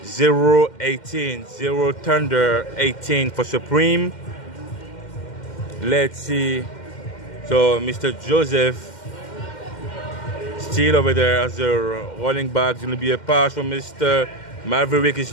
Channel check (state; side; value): late; right; 2.1 ms